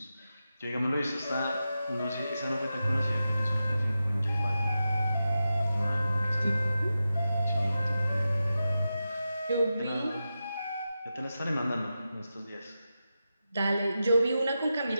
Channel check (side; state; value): both; inverted; correlation -0.91